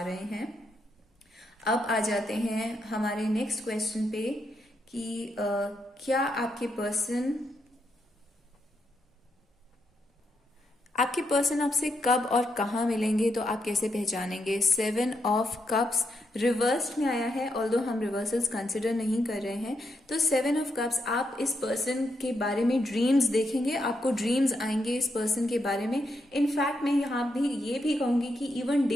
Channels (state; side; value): normal; both; correlation 0.81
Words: रहे हैं। अब आ जाते हैं हमारे नेक्स्ट क्वेश्चन पे कि क्या आपके पर्सन आपसे कब और कहाँ मिलेंगे, तो आप कैसे पहचानेंगे? 7 ऑफ कप्स रिवर्स्ड में आया है, ऑल्दो हम रिवर्सल्स कंसिडर नहीं कर रहे हैं। तो 7 ऑफ कप्स, आप इस पर्सन के बारे में ड्रीम्स देखेंगे, आपको ड्रीम्स आएंगे इस पर्सन के बारे में। इनफैक्ट मैं यहाँ भी ये भी कहूंगी कि इवन